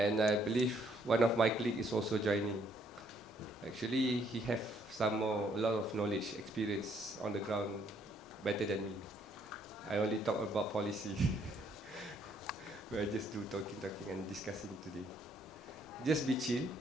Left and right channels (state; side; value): normal; both; correlation 0.67